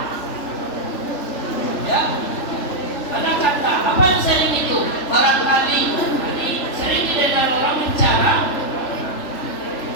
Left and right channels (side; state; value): right; late; 3.4 ms